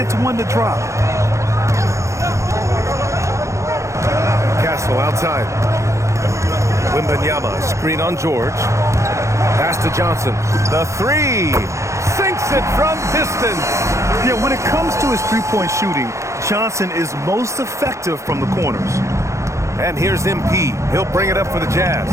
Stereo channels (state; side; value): late; left; 0.14 ms